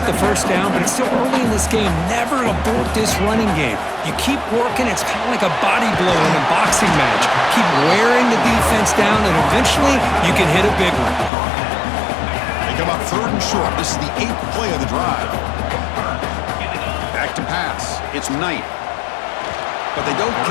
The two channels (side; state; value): right; drops out; at 11.3 s